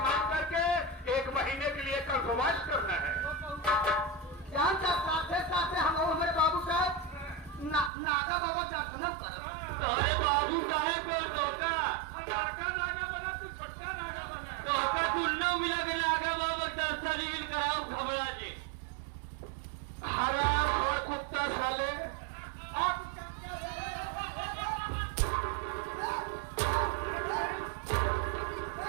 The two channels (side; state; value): left; drops out; at 7.9 s